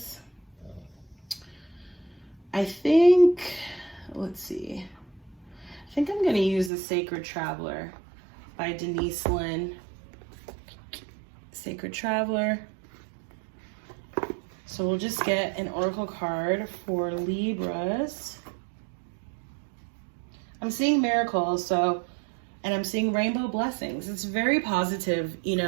I think, let's see. I think I'm going to use the Sacred Traveler by Denise Lynn. Sacred Traveler. So we'll just get an oracle card for Libras. I'm seeing miracles, so, and I'm seeing rainbow blessings. It's very positive, you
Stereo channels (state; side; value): drops out; left; at 6.7 s